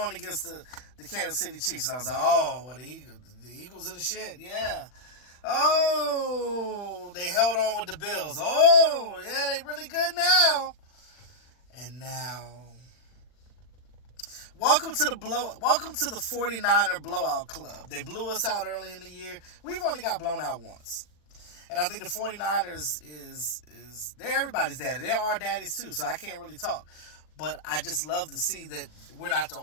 against the Kansas City Chiefs. And I was like, oh, well, the Eagles are the shit. Yeah. Oh, they held on with the Bills. Oh, yeah, they really good now. And now, welcome to the 49er blowout club. They blew us out early in the year. We've only got blown out once. And I think the 49ers they're everybody's daddy. They're our daddies too, so I can't really talk. But I just love to see that we're not the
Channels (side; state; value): right; late; 40 ms